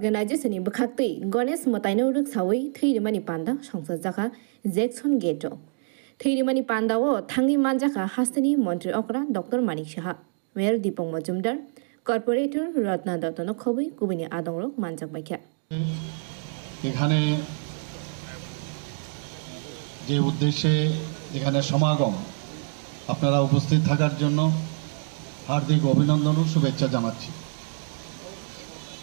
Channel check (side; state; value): left; silent; 61 dB below the other